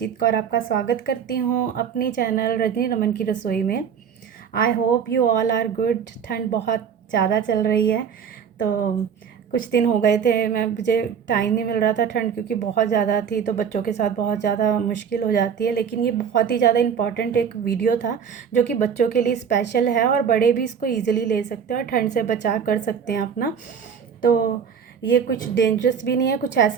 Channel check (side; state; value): left; quieter; 7.3 dB